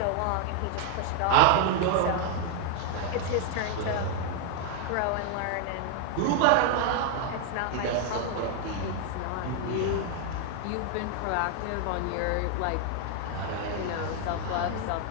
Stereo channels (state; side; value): different; both; correlation 0.01